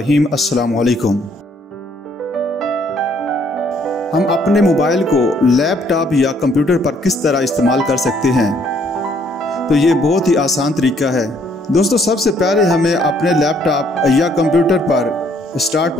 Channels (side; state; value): both; normal; correlation 0.66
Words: अस्सलाम वालेकुम। हम अपने मोबाइल को लैपटॉप या कंप्यूटर पर किस तरह इस्तेमाल कर सकते हैं, तो ये बहुत ही आसान तरीका है। दोस्तों, सबसे पहले हमें अपने लैपटॉप या कंप्यूटर पर स्टार्ट